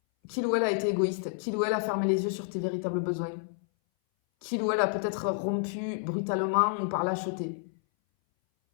qu'il ou elle a été égoïste, qu'il ou elle a fermé les yeux sur tes véritables besoins, qu'il ou elle a peut-être rompu brutalement ou par lâcheté.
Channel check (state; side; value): silent; right; 58 dB below the other